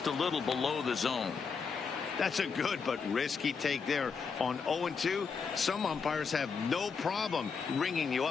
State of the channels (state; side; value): quieter; right; 5.6 dB